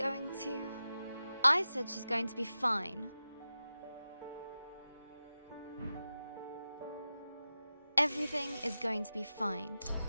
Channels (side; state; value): both; inverted; correlation -0.93